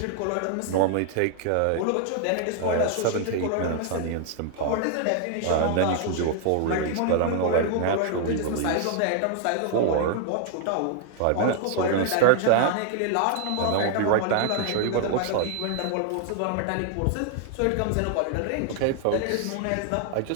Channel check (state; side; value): different; both; correlation 0.00